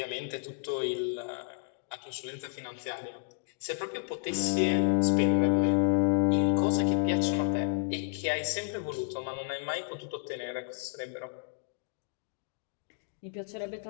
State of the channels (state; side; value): silent; right; digital silence